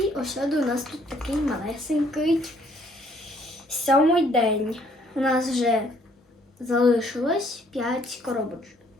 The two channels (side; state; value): both; normal; correlation 0.64